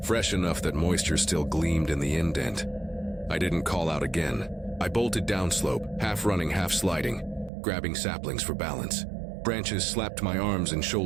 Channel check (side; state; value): left; drops out; at 7.5 s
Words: fresh enough that moisture still gleamed in the indent. I didn't call out again. I bolted downslope, half running, half sliding, grabbing saplings for balance. Branches slapped my arms and